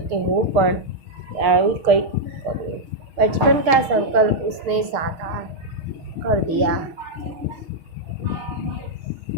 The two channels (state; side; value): late; left; 6.5 ms